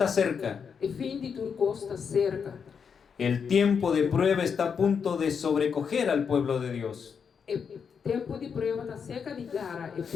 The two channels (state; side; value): quieter; right; 6.5 dB